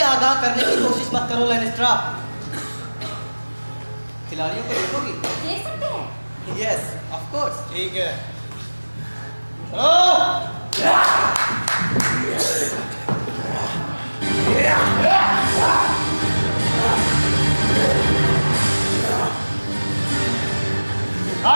आगाह करने की कोशिश मत करो लैनिस्ट्रा। खिलाड़ियों को देखोगी? देख सकते हैं। Yes, of course. ठीक है, चलो।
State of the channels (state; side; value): inverted; both; correlation -1.00